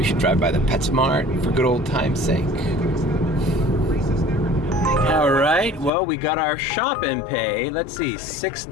should drive by the PetSmart for good old time's sake. All right, well, we got our shop and pay. Let's see,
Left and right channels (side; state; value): right; drops out; at 5.9 s